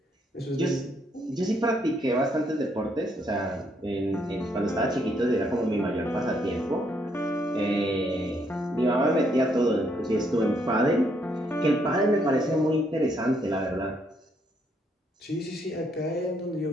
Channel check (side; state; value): both; normal; correlation 0.72